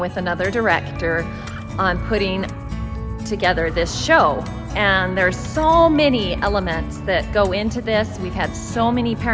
another director on putting together this show. And there's so many elements that go into this. We've had so many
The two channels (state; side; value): identical; both; correlation 1.00